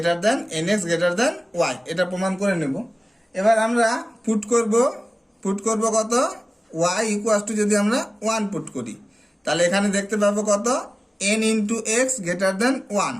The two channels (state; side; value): normal; both; correlation 0.97